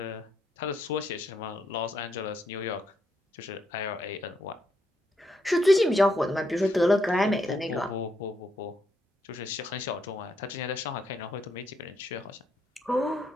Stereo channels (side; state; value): both; normal; correlation 0.77